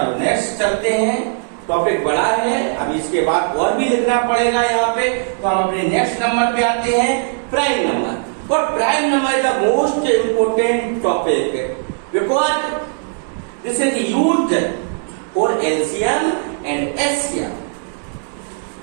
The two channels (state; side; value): silent; left; digital silence